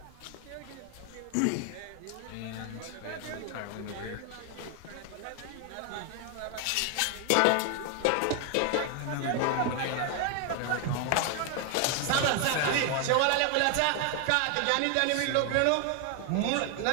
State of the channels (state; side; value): different; both; correlation 0.01